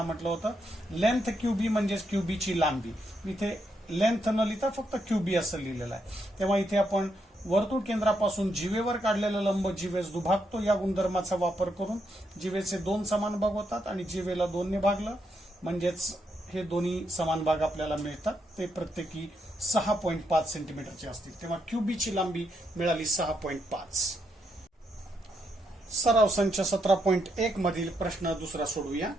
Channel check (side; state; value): both; normal; correlation 0.79